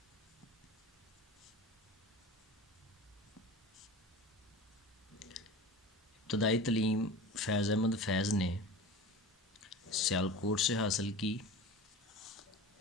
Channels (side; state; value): both; normal; correlation 0.34